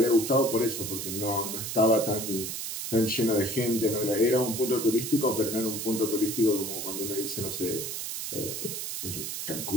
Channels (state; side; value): noise; right; hiss, 4 dB below the sound